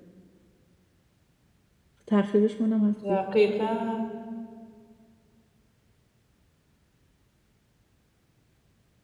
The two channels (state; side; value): identical; both; correlation 1.00